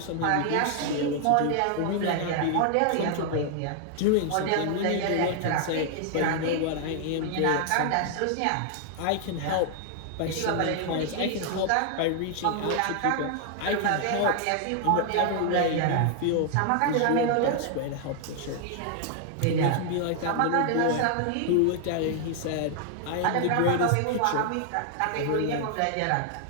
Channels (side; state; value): both; different; correlation 0.00